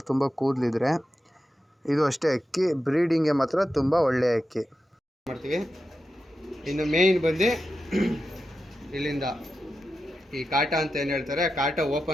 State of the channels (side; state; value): both; normal; correlation 0.90